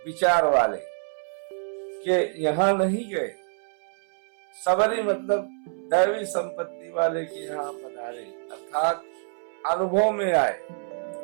विचार वाले के यहाँ नहीं गए। सबरी मतलब दैवी संपत्ति वाले के यहाँ पधारे, अर्थात अनुभव में आए।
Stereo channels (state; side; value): silent; left; 61 dB below the other